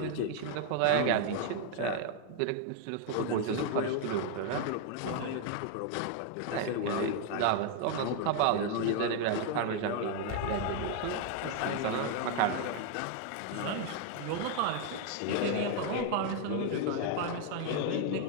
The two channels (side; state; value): both; different; correlation 0.00